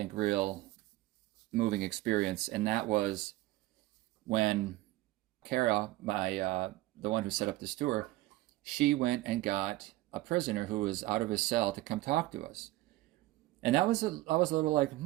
real moving experience, and that was when Kara, the one who set up this tour, she went and got a prisoner who was out of his cell to come talk to us. And I was a little like,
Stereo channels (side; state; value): left; quieter; 17.9 dB